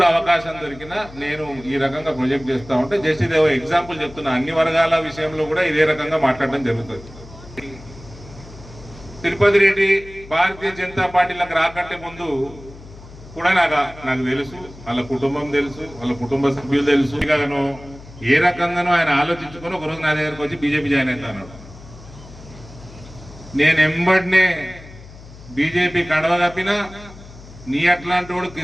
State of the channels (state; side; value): noise; left; hum, 18 dB below the sound